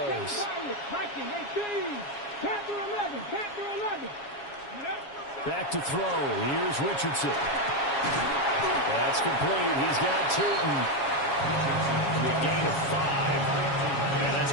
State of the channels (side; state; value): right; late; 7.3 ms